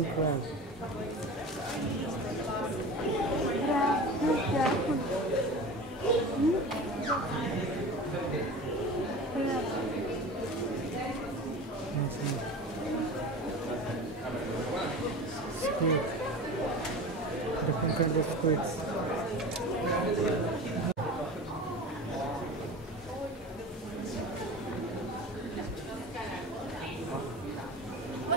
crab. Squid. Different kind of squids.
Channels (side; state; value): both; normal; correlation 0.34